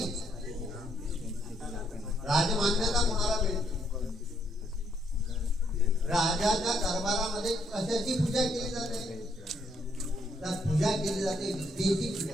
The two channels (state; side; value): normal; both; correlation 0.72